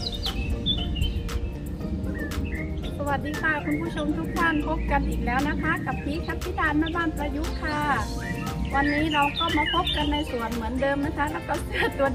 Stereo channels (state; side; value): identical; both; correlation 1.00